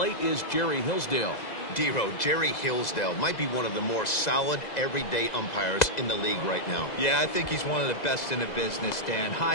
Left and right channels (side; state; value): right; late; 2.0 ms